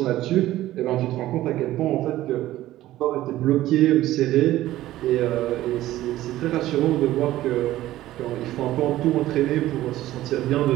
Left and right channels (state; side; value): quieter; left; 15.0 dB